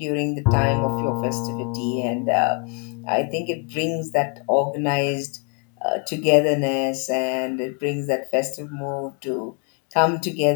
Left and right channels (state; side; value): quieter; right; 37.0 dB